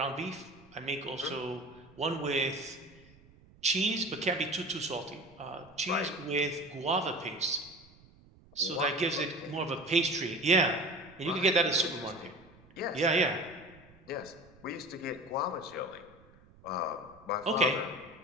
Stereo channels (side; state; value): right; noise; rumble, 26 dB below the sound